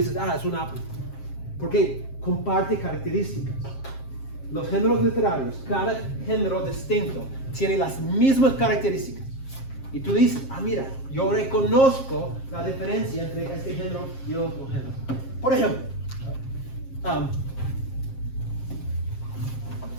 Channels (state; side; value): late; right; 7.5 ms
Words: es un Apple. Porque comparte características. Los géneros literarios, cada género distinto, tiene las mismas características. Y tú dices, mira, yo reconozco la diferencia entre este género y otro género. Por ejemplo,